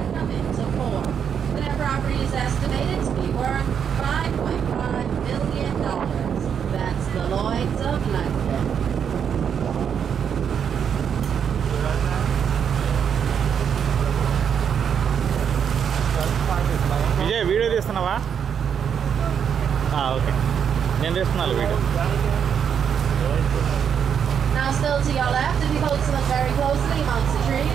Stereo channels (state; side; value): quieter; left; 7.8 dB